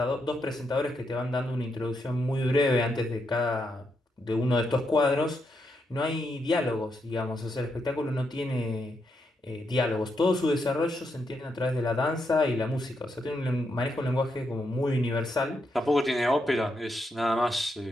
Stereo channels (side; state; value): both; normal; correlation 0.81